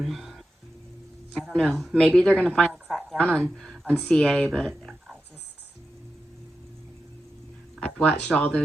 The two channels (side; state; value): both; normal; correlation 0.90